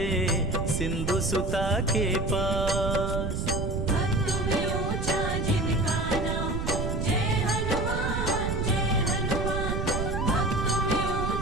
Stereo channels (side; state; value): right; noise; rumble, 1 dB below the sound